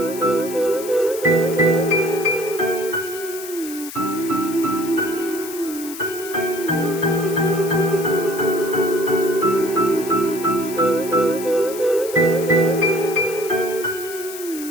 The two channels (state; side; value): noise; left; hiss, 12 dB below the sound